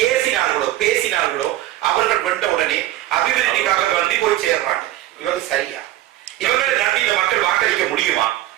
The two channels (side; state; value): left; quieter; 14.7 dB